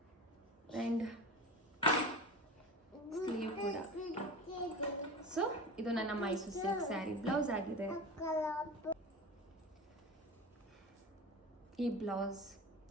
ಆ್ಯಂಡ್ ಸ್ಲೀವ್ ಕೂಡ. ಸೊ ಇದು ನನ್ನ ಮೈಸೂರು ಸಿಲ್ಕ್ ಸ್ಯಾರಿ ಬ್ಲೌಸ್ ಆಗಿದೆ. ಈ ಬ್ಲೌಸ್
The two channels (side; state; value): both; normal; correlation 0.31